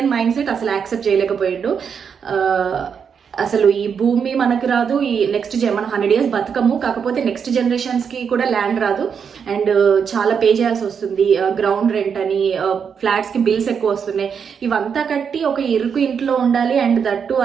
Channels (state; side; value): quieter; left; 6.8 dB